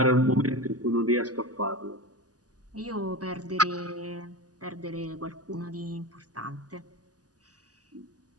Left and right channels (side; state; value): left; late; 0.67 ms